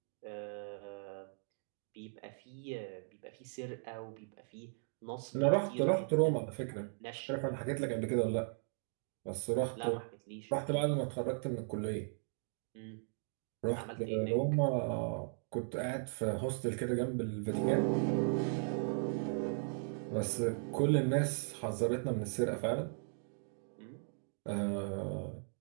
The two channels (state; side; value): silent; left; digital silence